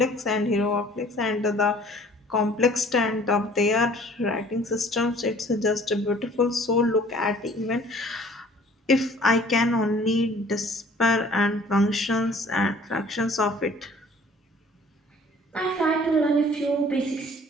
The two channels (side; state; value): both; normal; correlation 0.53